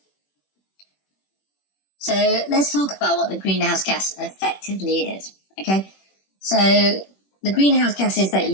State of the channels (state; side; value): late; right; 21 ms